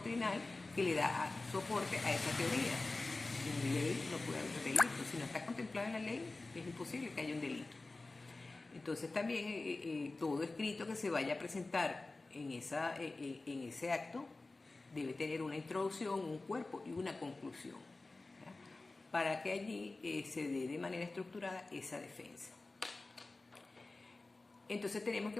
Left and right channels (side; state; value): right; quieter; 3.3 dB